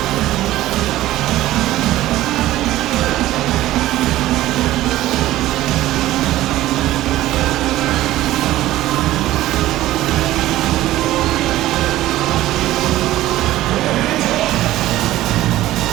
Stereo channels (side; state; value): left; quieter; 15.3 dB